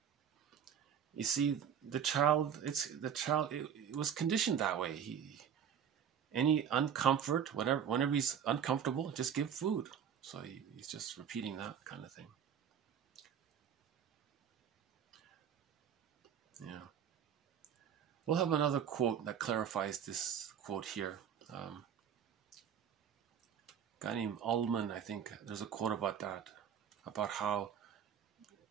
you see, the child, it was conditioned that way. Any uncomfort, whenever he's uncomfortable, just give food. So he's just repeating that kind of thing. Yeah. We'll have another quote that clarifies this quote here. A guy named Ullman, I think, there's a quote about that, about how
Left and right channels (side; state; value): left; quieter; 8.3 dB